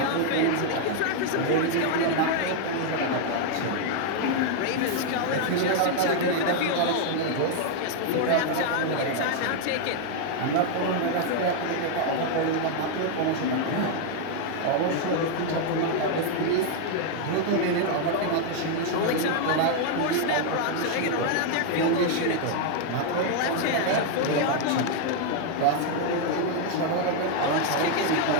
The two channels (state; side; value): different; both; correlation 0.00